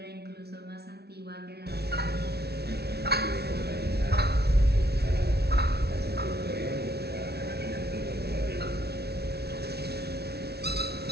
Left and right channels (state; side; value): late; left; 0.47 ms